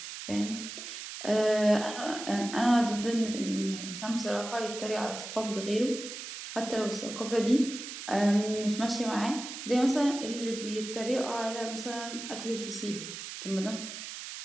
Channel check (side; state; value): right; noise; hiss, 9 dB below the sound